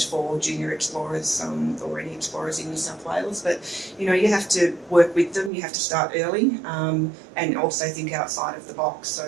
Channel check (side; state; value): left; drops out; at 5.5 s